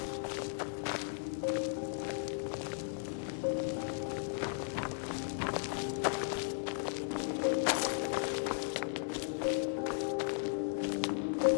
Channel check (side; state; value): right; silent; digital silence